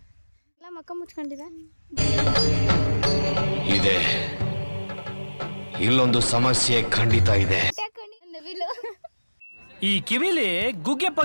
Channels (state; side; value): inverted; both; correlation -1.00